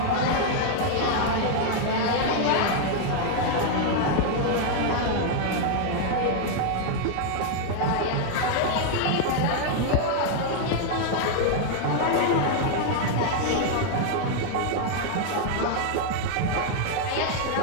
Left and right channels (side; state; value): both; different; correlation 0.00